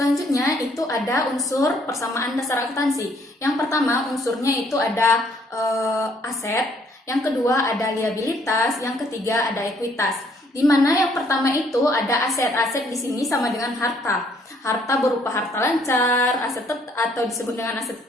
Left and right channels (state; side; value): normal; both; correlation 0.65